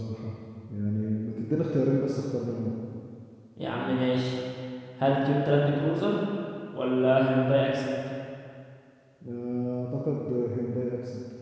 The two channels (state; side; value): identical; both; correlation 1.00